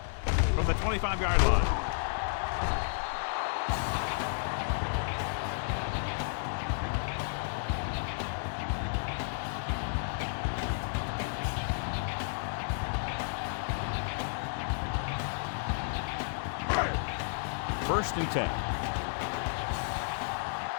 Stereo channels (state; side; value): silent; right; 56 dB below the other